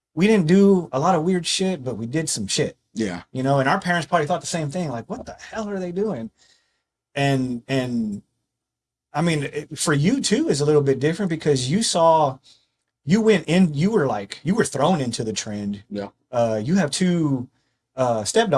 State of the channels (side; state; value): both; identical; correlation 1.00